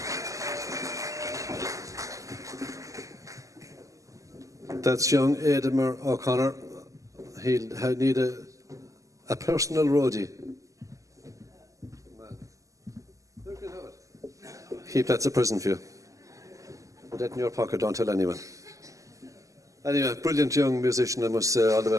That's young Darren O'Connor. He'll need a personal roadie. Keep that as a present for you. Put that in your pocket, don't tell anyone. Anyway, brilliant young musician, I must say, all the way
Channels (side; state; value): left; late; 0.16 ms